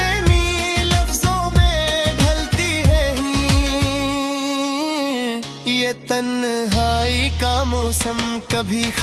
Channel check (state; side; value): identical; both; correlation 1.00